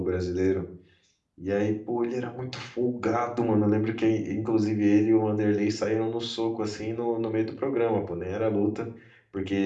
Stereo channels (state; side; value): identical; both; correlation 1.00